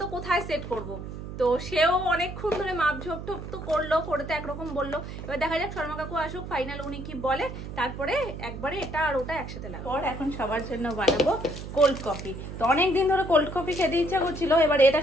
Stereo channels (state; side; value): noise; right; hum, 9 dB below the sound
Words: তো, কোথায় সেট করবো। তো সেও অনেকক্ষণ ধরে মাপঝোপ টোপ তো করলো, করতে একরকম বললো। এবার দেখা যাক শর্মা কাকু আসুক, ফাইনাল উনি কি বলে, তারপরে একবারে এটা আর ওটা একসাথে লাগবে। পর এখন সবার জন্য বানাবো কোল্ড কফি। তো অনেকদিন ধরে কোল্ড কফি খেতে ইচ্ছা করছিল, এবার এটা